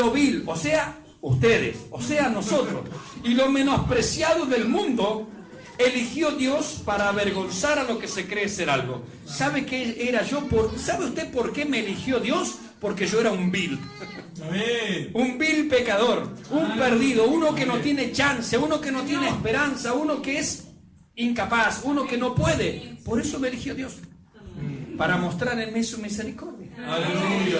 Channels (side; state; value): both; identical; correlation 1.00